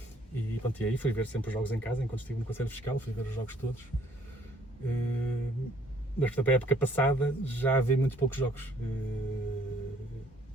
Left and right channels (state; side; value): normal; both; correlation 0.62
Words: E, pronto, e aí fui ver sempre os jogos em casa, enquanto estive no Conselho Fiscal, fui ver os jogos todos. Mas, portanto, a época passada já vi muito poucos jogos.